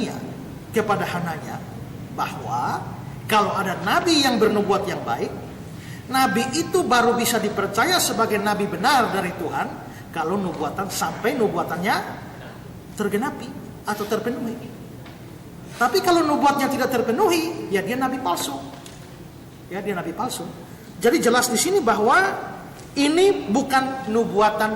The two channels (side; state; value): both; identical; correlation 1.00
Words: kepada Hananya bahwa kalau ada nabi yang bernubuat yang baik, nabi itu baru bisa dipercaya sebagai nabi benar dari Tuhan kalau nubuatan sampai nubuatannya tergenapi atau terpenuhi. Tapi kalau nubuatnya tidak terpenuhi, ya dia nabi palsu. Ya, dia nabi palsu. Jadi jelas di sini bahwa ini bukan